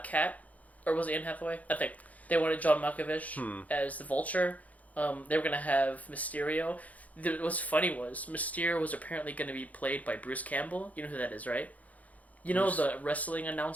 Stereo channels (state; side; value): late; right; 0.073 ms